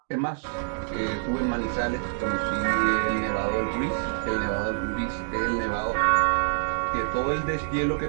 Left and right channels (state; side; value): silent; left; digital silence